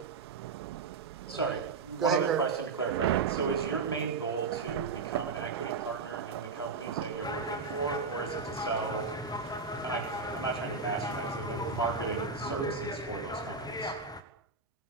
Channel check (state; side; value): quieter; left; 4.5 dB